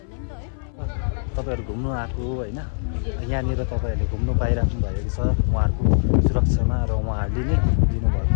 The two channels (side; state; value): right; silent; 61 dB below the other